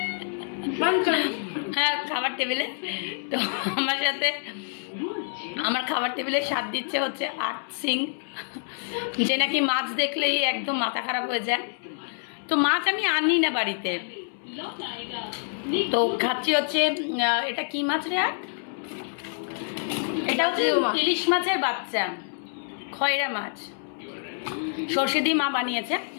হ্যাঁ, খাবার টেবিলে। তো আমার সাথে আমার খাবার টেবিলে স্বাদ দিচ্ছে হচ্ছে আর্ট সিং, যে নাকি মাছ দেখলেই একদম মাথা খারাপ হয়ে যায়। তো মাছ আমি আনি না বাড়িতে, তো খাচ্ছি হচ্ছে এটা কি মাছ রে? আর এটা হচ্ছে ইলিশ মাছের বাচ্চা, খয়রা মাছ, সর্ষে দিয়ে মা বানিয়েছে।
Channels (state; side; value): silent; right; 60 dB below the other